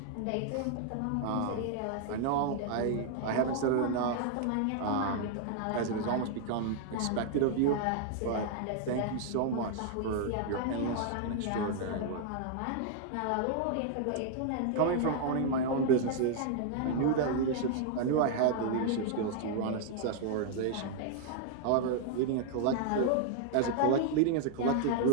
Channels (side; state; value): both; different; correlation 0.00